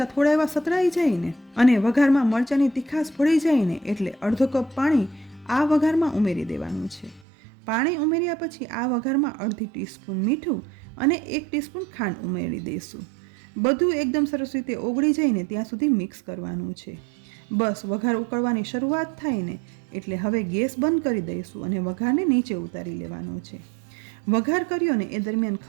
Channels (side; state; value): left; drops out; at 7.2 s